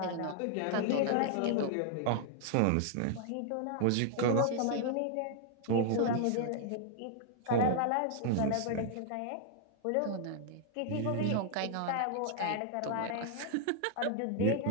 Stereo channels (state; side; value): different; both; correlation 0.00